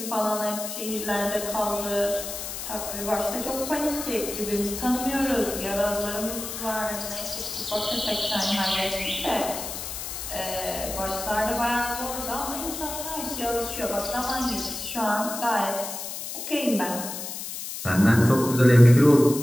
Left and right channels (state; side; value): noise; left; hiss, 7 dB below the sound